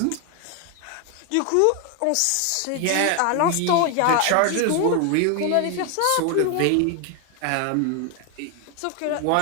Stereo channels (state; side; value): different; both; correlation 0.01